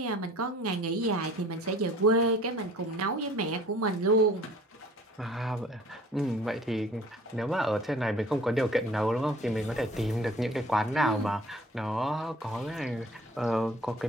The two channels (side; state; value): both; normal; correlation 0.50